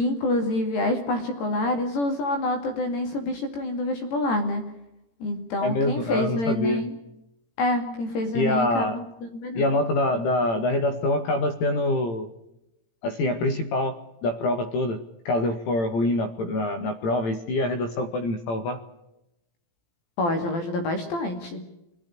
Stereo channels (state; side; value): late; right; 18 ms